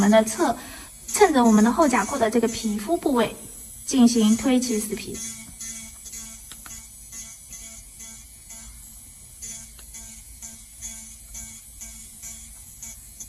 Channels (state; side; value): identical; both; correlation 1.00